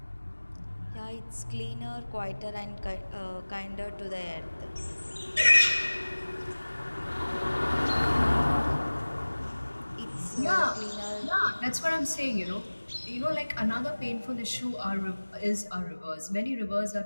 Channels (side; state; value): both; inverted; correlation -1.00